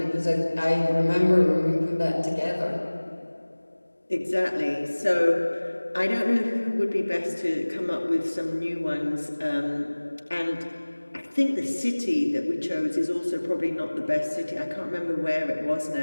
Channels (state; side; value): inverted; both; correlation -1.00